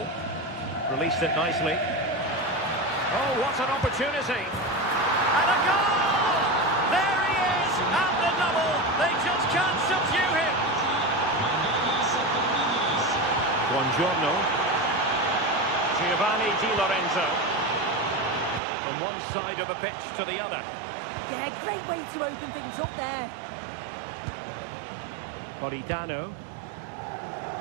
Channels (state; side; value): drops out; left; at 18.6 s